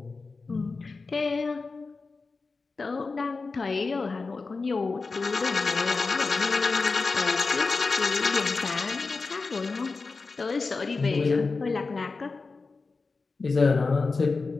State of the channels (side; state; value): right; quieter; 4.1 dB